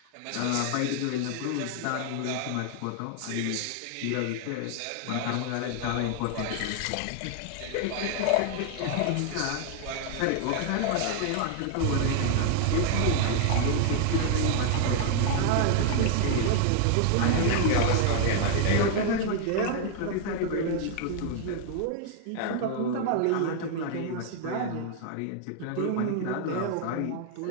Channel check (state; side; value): different; both; correlation 0.00